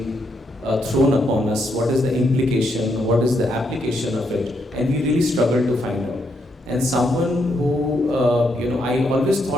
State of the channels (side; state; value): both; normal; correlation 0.77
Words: thrown upon us, what is the implication, what is the application of it, and we really struggled to find out. And someone who, I always